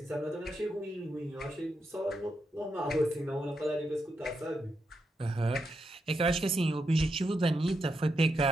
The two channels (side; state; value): both; normal; correlation 0.84